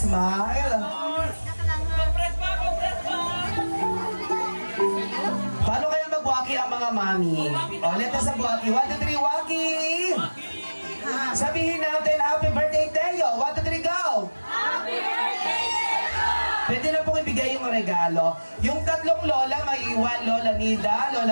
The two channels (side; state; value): both; inverted; correlation -1.00